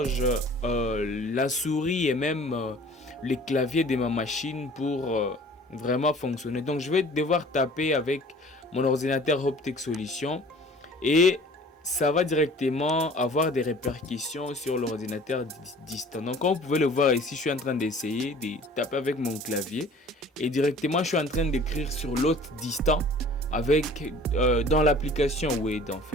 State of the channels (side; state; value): both; normal; correlation 0.48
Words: la souris et même les claviers de ma machine pour vraiment fonctionner. Donc je vais devoir taper avec mon ordinateur Hoptech Solutions et ça va directement avoir des répercussions sur l'ordinateur distant. Donc comme vous pouvez le voir ici, je suis en train d'essayer de taper avec mon clavier et directement je suis en train d'écrire sur l'autre distant avec dans l'application Word en